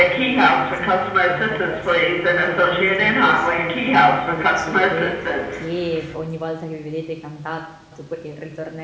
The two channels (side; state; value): both; identical; correlation 1.00